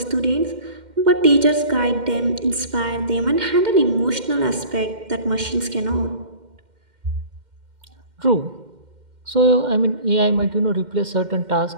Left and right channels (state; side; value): late; left; 2.1 ms